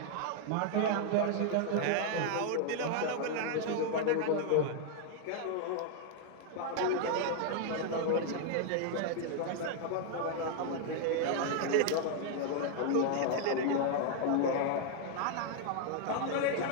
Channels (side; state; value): both; different; correlation 0.00